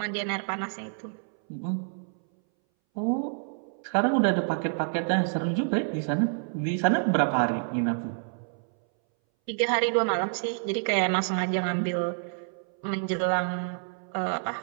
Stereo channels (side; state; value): left; silent; 59 dB below the other